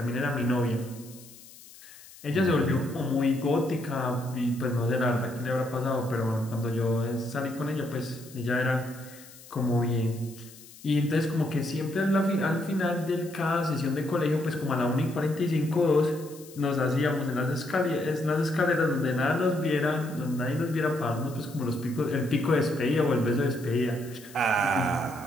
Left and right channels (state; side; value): noise; left; hiss, 20 dB below the sound